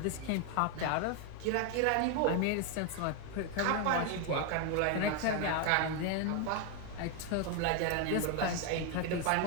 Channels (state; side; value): different; both; correlation 0.01